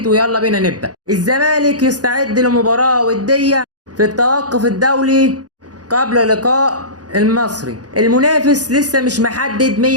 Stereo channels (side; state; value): left; late; 0.68 ms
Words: ويلا بينا نبدا. الزمالك يستعد لمباراه وديه في التوقف الدولي قبل لقاء المصري. المنافس لسه مش محدد